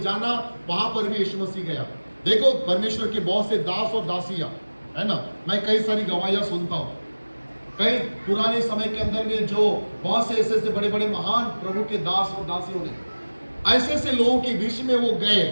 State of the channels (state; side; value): inverted; both; correlation -1.00